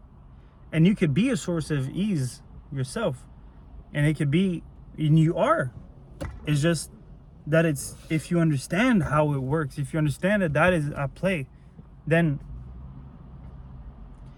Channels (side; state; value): both; identical; correlation 1.00